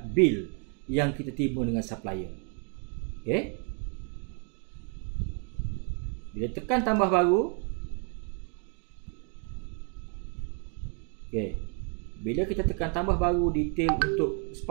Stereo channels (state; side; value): quieter; left; 39.6 dB